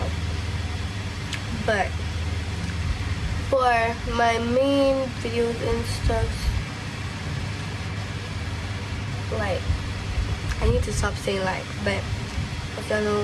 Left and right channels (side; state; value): both; identical; correlation 1.00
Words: But for my main videos and stuff, like I need to stop saying like, but if you